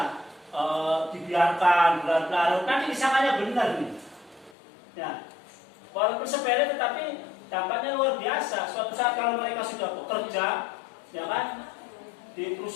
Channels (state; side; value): drops out; right; at 4.5 s